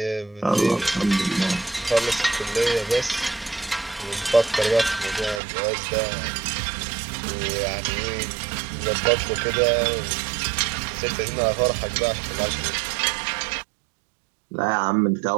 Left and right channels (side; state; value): left; drops out; at 5.4 s